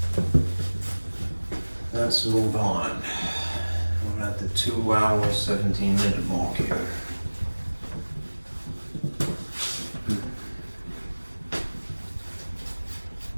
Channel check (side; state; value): both; inverted; correlation -1.00